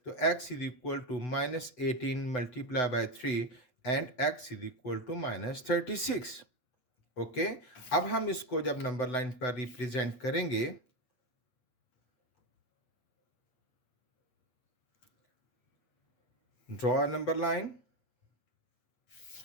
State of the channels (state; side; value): late; right; 8.0 ms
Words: तो x is equal to -18 multiply by 3 and x is equal to -36. Okay. अब हम इसको जब नंबर लाइन पर रिप्रेजेंट करेंगे, draw a number line.